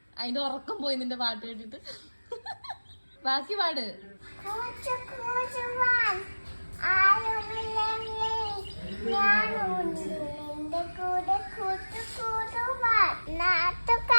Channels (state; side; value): inverted; both; correlation -1.00